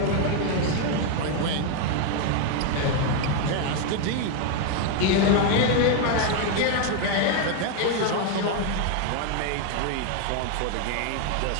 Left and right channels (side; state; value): both; different; correlation 0.01